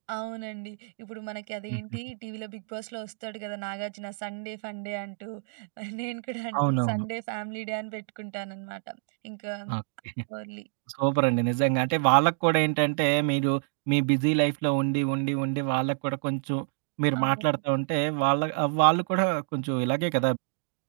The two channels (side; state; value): left; silent; digital silence